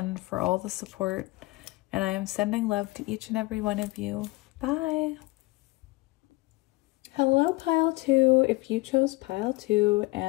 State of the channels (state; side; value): quieter; right; 22.2 dB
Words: for all the support. And I am sending love to each and every one of you. Bye. Hello, pile 2. If you chose pile 2